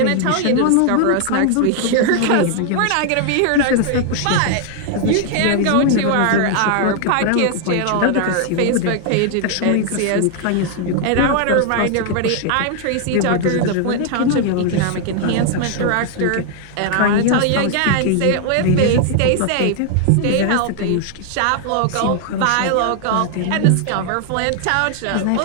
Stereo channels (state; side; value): different; both; correlation 0.00